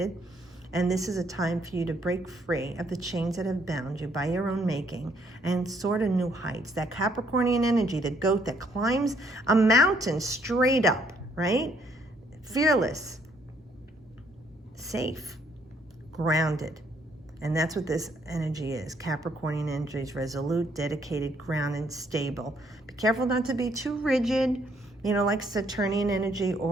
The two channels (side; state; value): both; normal; correlation 0.68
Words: And this is a time for you to break free of the chains that have bound you by your own making and soar to new heights. That Capricornian energy, the goat that climbs a mountain straight up, right? Fearless, safe, grounded. And that's what this energy is. Capricornian energy is resolute, dedicated, grounded, stable. Be careful not to be too rigid, you know, like Saturnian energy,